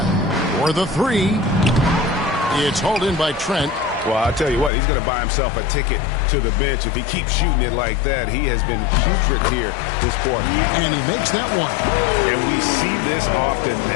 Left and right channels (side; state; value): right; drops out; at 4.7 s